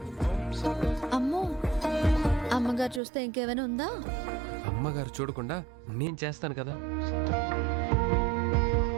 అమ్మో, అమ్మగారు చూస్తే ఇంకేమైనా ఉందా? అమ్మగారు చూడకుండా నేను చేస్తాను కదా.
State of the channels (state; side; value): drops out; left; at 3.0 s